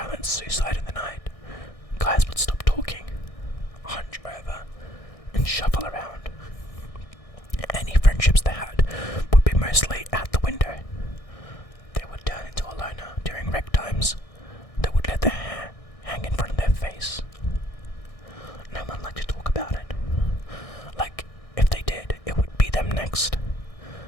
suicide in the night. Guys would stop talking, hunch over, and shuffle around. Any friendships they had would be mostly out the window. They would turn into a loner during rec times. They would let their hair hang in front of their face. No one liked to talk about it. Like, if they did, it would be them next.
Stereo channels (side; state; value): right; late; 1.6 ms